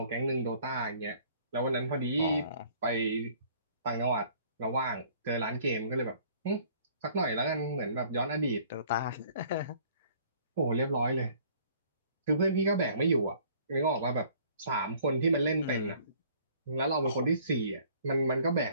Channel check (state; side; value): inverted; both; correlation -0.56